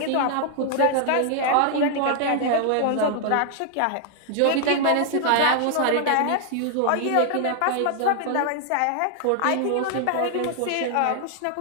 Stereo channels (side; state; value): both; different; correlation 0.00